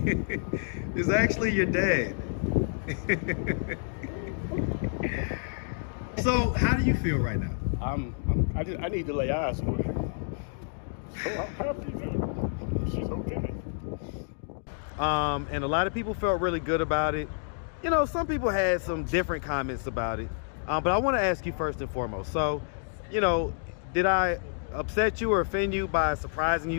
actually your dad. So how do you feel right now? I need to lay eyes on her. So I'm happy that she's okay. And a lot of people felt really good about it. You know, some people had some different comments about it. But I want to ask you first and foremost. So, you know, did I upset you or offend you by surprising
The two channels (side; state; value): right; silent; digital silence